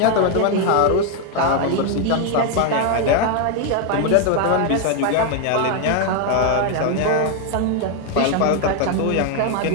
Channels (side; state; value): both; different; correlation 0.01